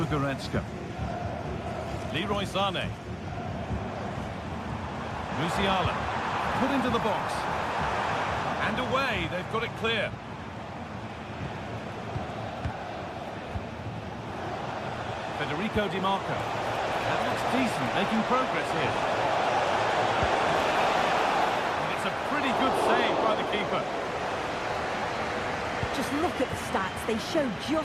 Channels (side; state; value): both; identical; correlation 1.00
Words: Goretzka. Leroy Sané. Musiala. Put into the box. And away, they've got it clear. Federico Di Marco. That looks decent, making progress here. And it's a pretty good save by the keeper. Just look at the stats. They show